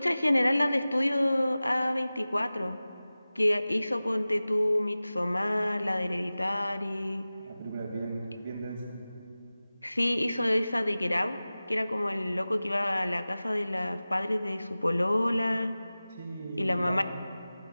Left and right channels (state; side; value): inverted; both; correlation -0.97